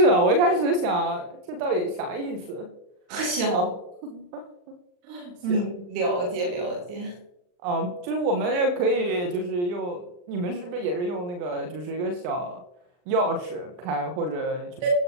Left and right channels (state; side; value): late; left; 39 ms